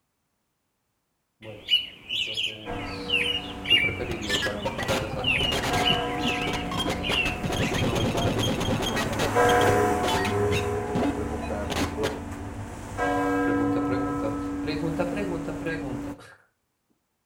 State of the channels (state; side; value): identical; both; correlation 1.00